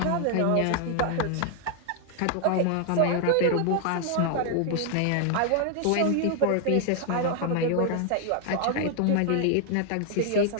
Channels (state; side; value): different; both; correlation 0.00